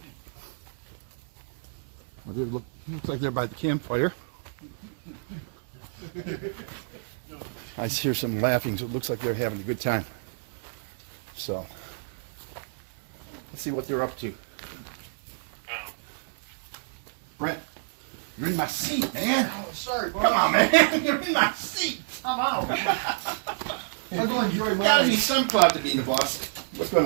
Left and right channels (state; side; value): silent; left; digital silence